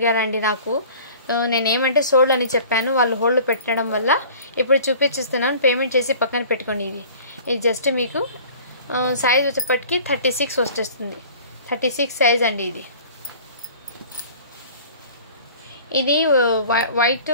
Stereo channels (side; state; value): both; inverted; correlation -0.46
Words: నాకు. నేనేమంటే సోల్డ్ అని చెప్పాను, వాళ్ళు హోల్డ్ పెట్టడం వల్ల ఇప్పుడు చూపించిస్తున్నాను. పేమెంట్ చేసి పక్కన పెట్టుకోండి. ఇది జస్ట్ మీకు సైజ్ వచ్చేప్పటికి 36 వచ్చేస్తుంది. 36 సైజ్ అండి. ఇది వైట్